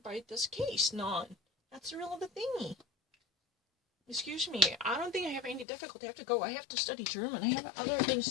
by this case. None. That's really the thingy. Excuse me, I don't think I have any difficulty. I have to go. I have to study German. I have other things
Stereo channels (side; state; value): right; drops out; at 5.7 s